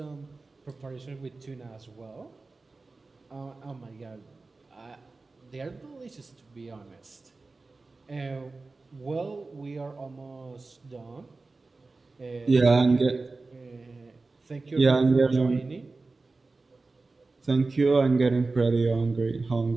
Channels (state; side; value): quieter; left; 3.6 dB